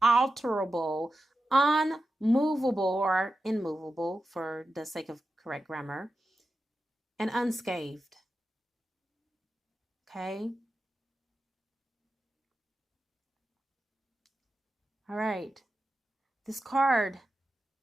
unmovable or immovable for the sake of correct grammar, and unscathed. Okay? All right. This card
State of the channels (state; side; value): normal; both; correlation 0.91